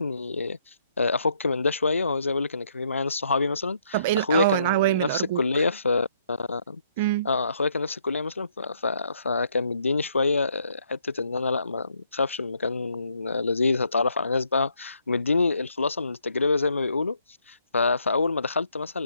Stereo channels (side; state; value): both; inverted; correlation -0.70